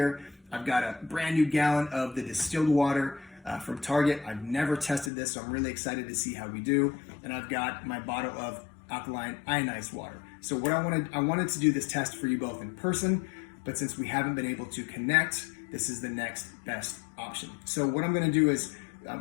I've got a brand new gallon of the distilled water from Target. I've never tested this, so I'm really excited to see how we do. And I've got my bottle of alkaline ionized water. So what I wanted to do this test for you both in person, but since we haven't been able to connect, this is the next best option. So what I'm gonna do is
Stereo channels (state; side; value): drops out; right; at 5.1 s